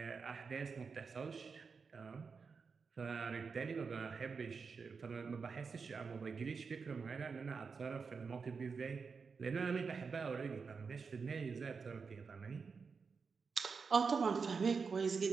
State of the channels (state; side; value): quieter; left; 5.2 dB